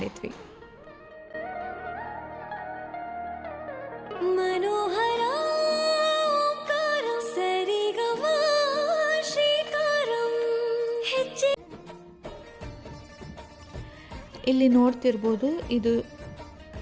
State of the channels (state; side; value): identical; both; correlation 1.00